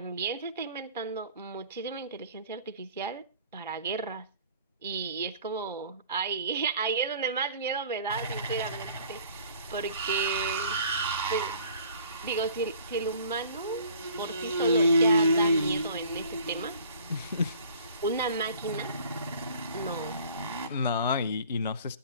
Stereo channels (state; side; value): inverted; both; correlation -0.51